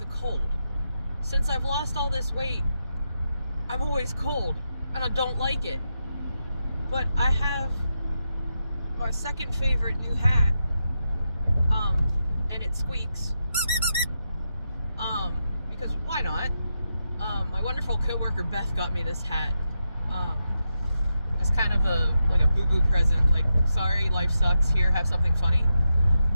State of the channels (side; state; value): both; inverted; correlation -0.86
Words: cold. Since I've lost all this weight, I'm always cold, and I don't like it. But I have my second favorite new hat, and it squeaks, because why not? My wonderful coworker Beth got me this hat, as kind of a boo-boo present, like, sorry, life sucks, here, have something funny.